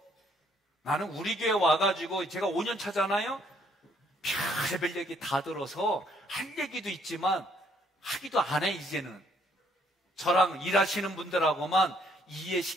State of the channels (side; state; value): both; normal; correlation 0.67